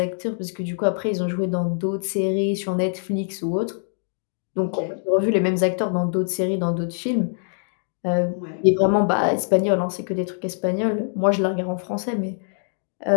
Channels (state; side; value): silent; right; digital silence